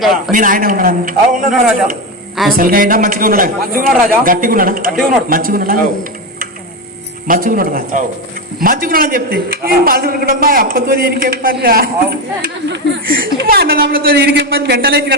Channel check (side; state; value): both; normal; correlation 0.14